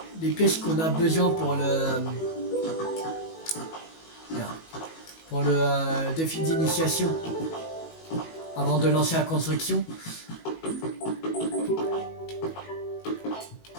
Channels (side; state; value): right; late; 18 ms